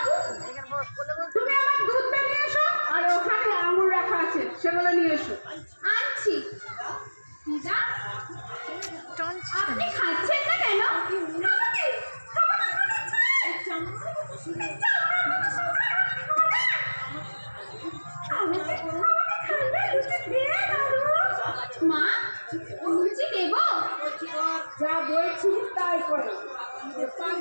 তুমি আমার দুধ নিয়ে এসো আর ওখানে আঙুর রাখা আছে সেগুলো নিয়ে এসো। আনছি। আপনি খাচ্ছেন না কেন? মা লুচি দেব? যা বলছি তাই করো।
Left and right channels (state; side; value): inverted; both; correlation -1.00